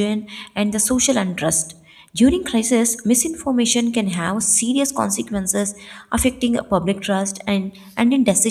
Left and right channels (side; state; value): both; identical; correlation 1.00